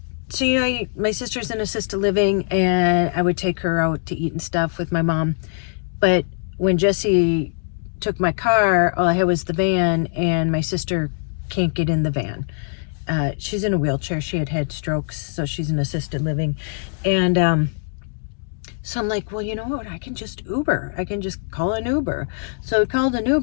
so my sister's in assisted living, and I would take her out to eat and stuff with my mom, but when Jesse took my car, all I had was the van, and my sister can't get in the van. She's in a wheelchair. She had strokes, so she's in assisted living. And so I'm like, well, you know what? I can just Uber. I can just call an Uber. So I called an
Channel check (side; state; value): right; silent; digital silence